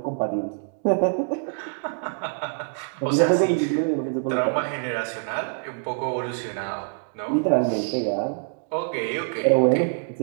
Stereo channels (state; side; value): silent; left; digital silence